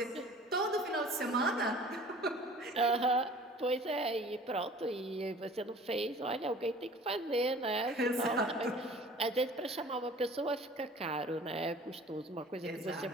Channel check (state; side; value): normal; both; correlation 0.47